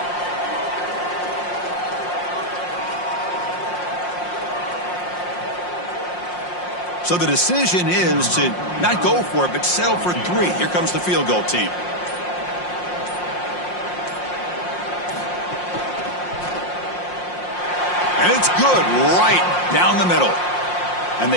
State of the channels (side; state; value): right; late; 5.6 ms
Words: So the decision is to not go for it, but settle for 3. Here comes the field goal team. And it's good right down the middle. And